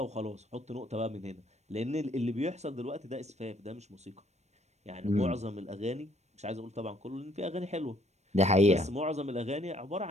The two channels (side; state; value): left; late; 0.32 ms